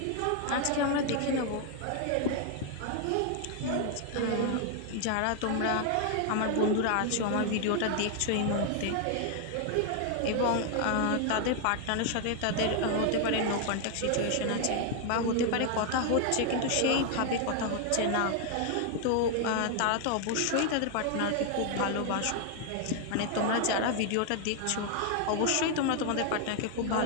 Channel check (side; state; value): both; different; correlation 0.00